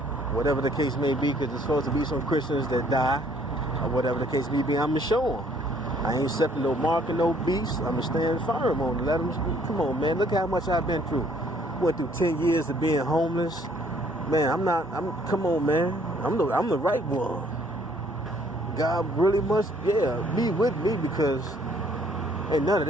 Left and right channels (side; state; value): both; normal; correlation 0.62